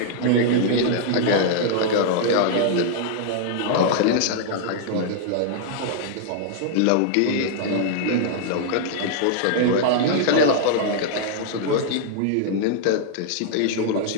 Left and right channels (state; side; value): different; both; correlation -0.01